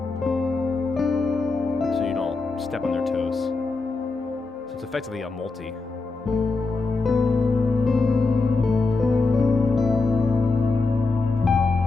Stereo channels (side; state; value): right; quieter; 3.8 dB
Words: so you don't step on their toes. So it's effectively a multi.